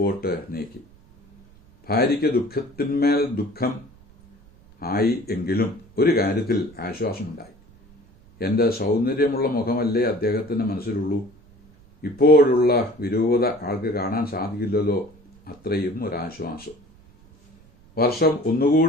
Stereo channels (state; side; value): noise; right; rumble, 27 dB below the sound